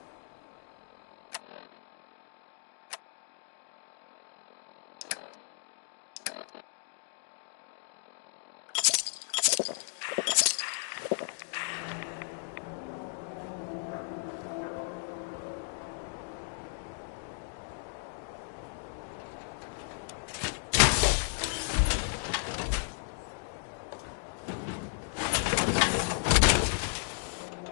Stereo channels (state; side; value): silent; right; digital silence